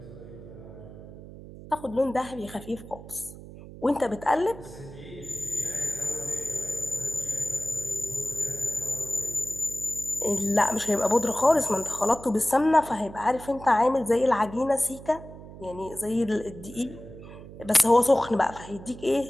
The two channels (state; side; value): noise; right; hum, 15 dB below the sound